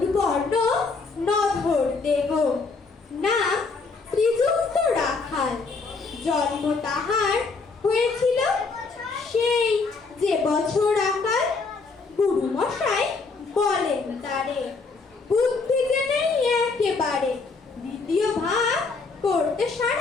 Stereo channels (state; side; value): quieter; right; 4.2 dB